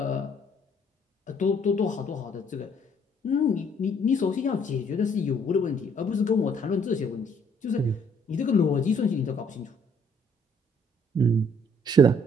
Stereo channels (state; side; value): normal; both; correlation 0.64